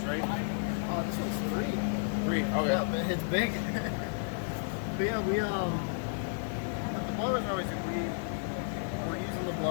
right? This one's 3. 3. Okay. Yeah, but it's big. But yeah, the blowers are always we're using the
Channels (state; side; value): silent; right; digital silence